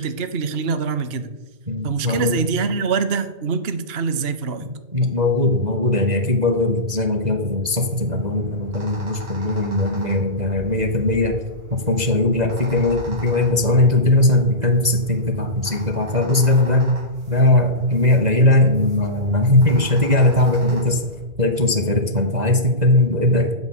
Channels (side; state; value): left; late; 2.0 ms